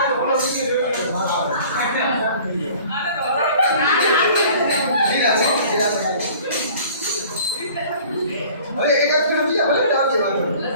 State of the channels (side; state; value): both; inverted; correlation -0.49